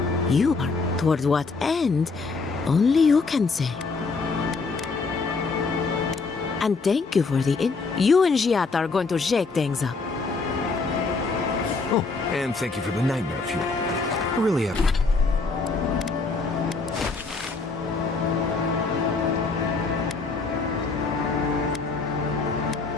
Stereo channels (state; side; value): quieter; right; 4.2 dB